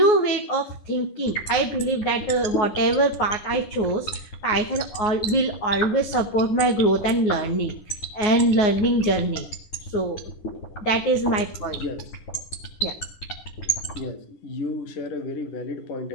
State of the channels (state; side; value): late; right; 9.5 ms